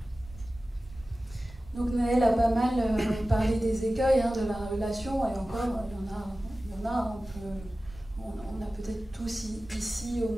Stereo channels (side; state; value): both; normal; correlation 0.96